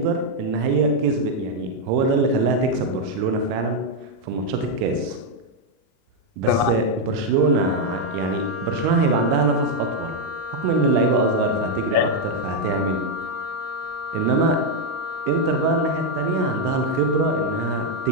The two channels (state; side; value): late; left; 38 ms